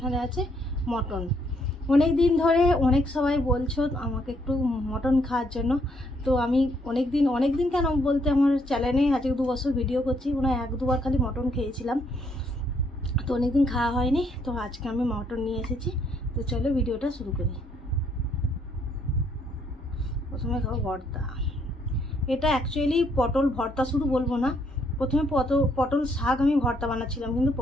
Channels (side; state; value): both; normal; correlation 0.71